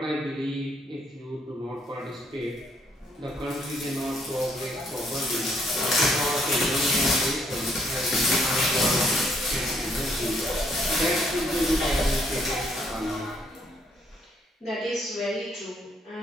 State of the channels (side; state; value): both; normal; correlation 0.69